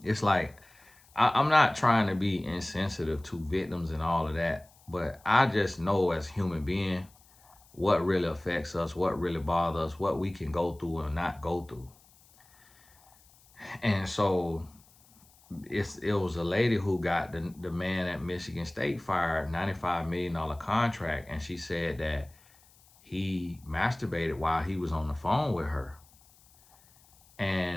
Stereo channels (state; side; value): noise; left; hiss, 28 dB below the sound